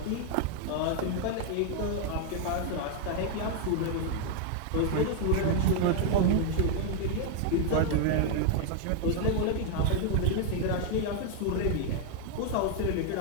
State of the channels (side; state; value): both; different; correlation 0.00